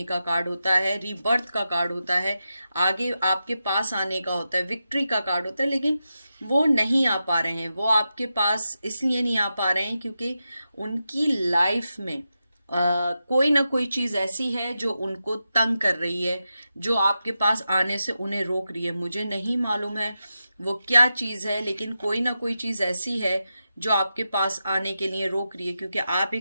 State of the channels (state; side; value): inverted; both; correlation -0.89